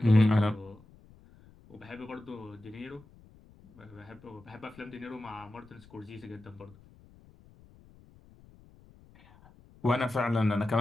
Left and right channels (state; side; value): noise; left; rumble, 24 dB below the sound